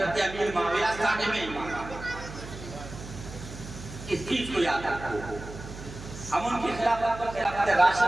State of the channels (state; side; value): noise; right; hum, 12 dB below the sound